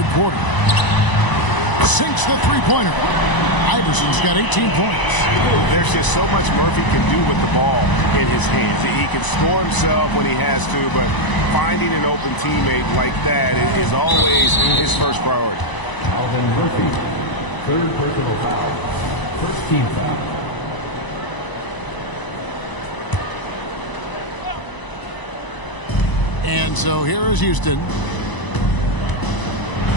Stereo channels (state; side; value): late; right; 1.0 ms